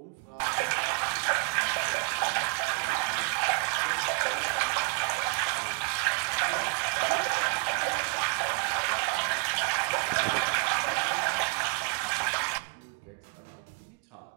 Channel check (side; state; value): left; quieter; 39.1 dB